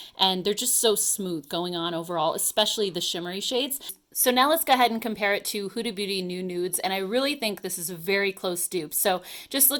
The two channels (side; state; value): both; identical; correlation 1.00